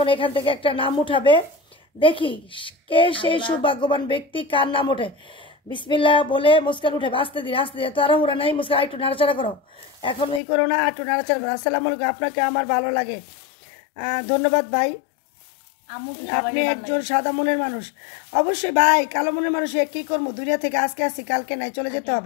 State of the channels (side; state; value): right; drops out; at 10.4 s